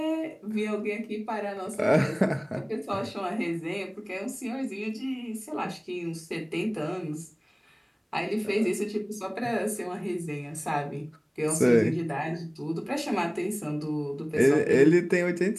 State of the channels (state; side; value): identical; both; correlation 1.00